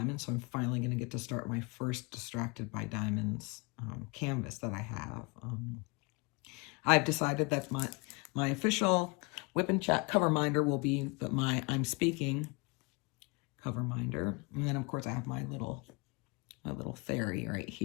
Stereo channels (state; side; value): quieter; right; 28.8 dB